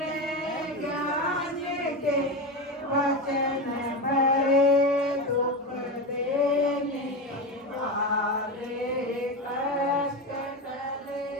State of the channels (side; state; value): both; normal; correlation 0.19